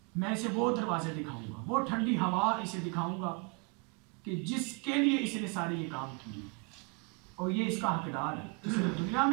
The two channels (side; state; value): left; quieter; 33.8 dB